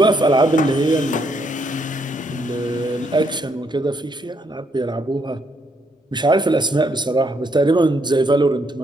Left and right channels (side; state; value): both; normal; correlation 0.74